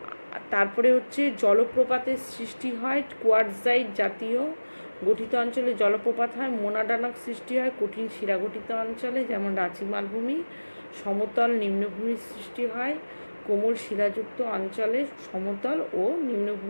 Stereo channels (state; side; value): inverted; both; correlation -1.00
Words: তারপরে হচ্ছে জলপ্রপাতের সৃষ্টি হয় কোয়ার্টজাইট জাতীয় গঠিত অঞ্চলে জলপ্রপাত হয়। মোনাডানক সৃষ্টি হয় কঠিন শিলা গঠিত অঞ্চলে যেমন রাঁচি মালভূমি। সমতল নিম্নভূমির সৃষ্টি হয় কোমল শিলাযুক্ত অঞ্চলে, সমতল ও